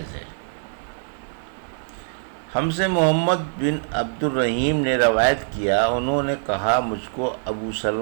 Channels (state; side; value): silent; left; digital silence